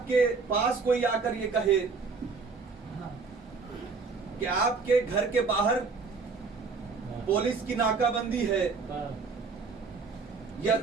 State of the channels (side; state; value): left; quieter; 4.7 dB